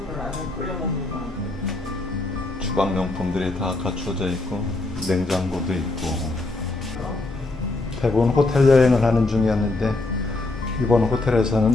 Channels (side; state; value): right; quieter; 3.1 dB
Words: 주방용품들이 다 갖춰져 있고 냉장고도 있고 대부분 호텔 여행을 하는 중이었는데 이번